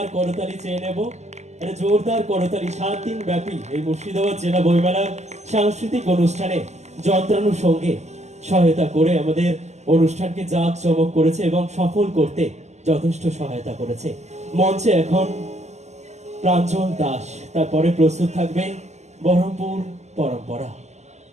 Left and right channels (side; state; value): left; late; 0.33 ms